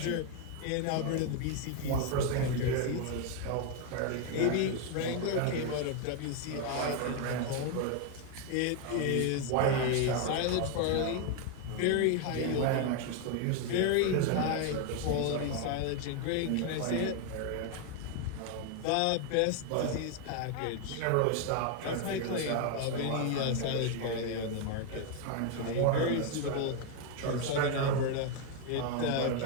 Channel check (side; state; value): both; different; correlation 0.01